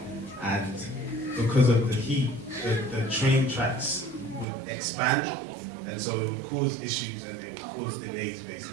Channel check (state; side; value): drops out; left; at 4.5 s